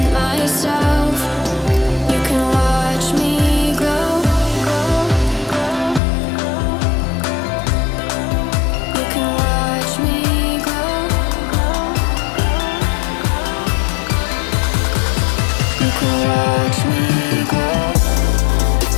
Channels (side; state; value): right; drops out; at 6.0 s